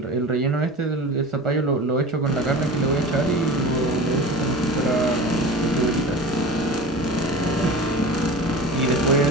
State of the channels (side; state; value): both; normal; correlation 0.34